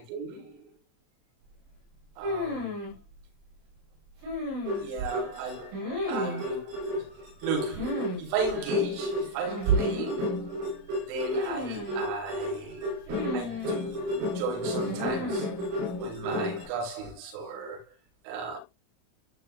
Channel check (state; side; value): late; left; 35 ms